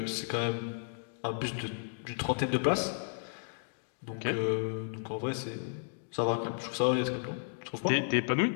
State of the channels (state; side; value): silent; right; digital silence